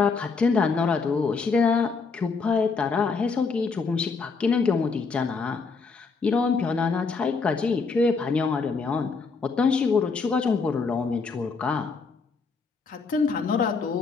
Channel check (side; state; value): right; quieter; 4.7 dB